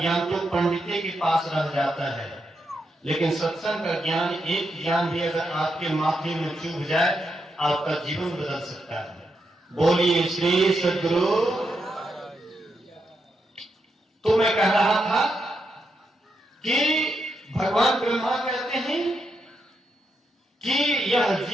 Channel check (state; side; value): normal; both; correlation 0.83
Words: तो पंडिते के पास रह जाता है, लेकिन सत्संग का ज्ञान, एक ज्ञान भी अगर आपके माथे में चुभ जाए, आपका जीवन बदल सकता है। बोलिए श्री सद्गुरु। तो मैं कह रहा था कि भगवान ब्रह्मा कहते हैं कि यह